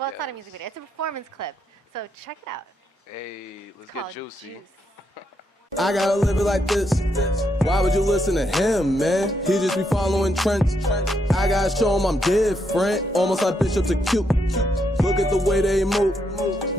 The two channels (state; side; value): normal; both; correlation 0.78